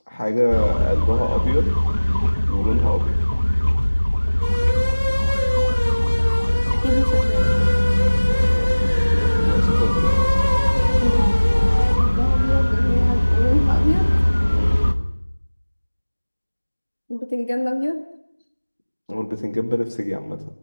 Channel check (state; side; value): inverted; both; correlation -1.00